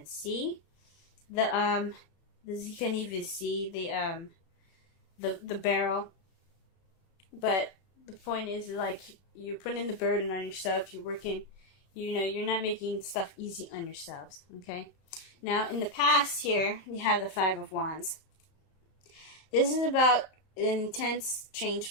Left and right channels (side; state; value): right; late; 34 ms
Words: see the barrel. But the point is, like, you're putting the burden on yourself. You're working. You know, you're not making stuff easy on yourselves. Okay. Now, in the past, here we have the Five of Wands. This is about an intense